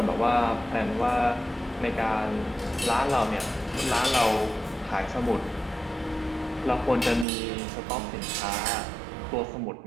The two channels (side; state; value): left; drops out; at 7.2 s